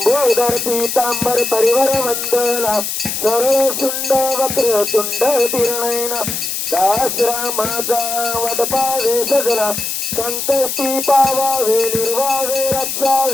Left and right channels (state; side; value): noise; left; hiss, 3 dB below the sound